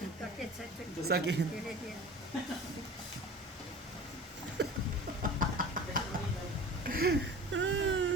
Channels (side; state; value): both; normal; correlation 0.38